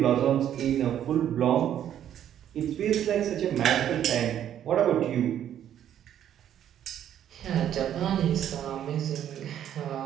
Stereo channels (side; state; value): left; quieter; 10.4 dB